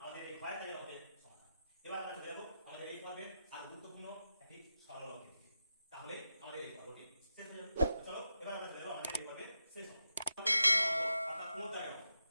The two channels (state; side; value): inverted; both; correlation -0.88